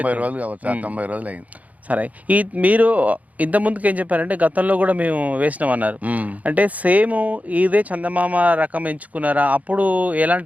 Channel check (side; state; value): left; late; 0.073 ms